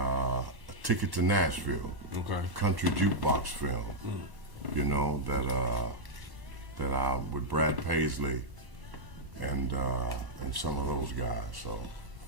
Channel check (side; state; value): left; late; 1.1 ms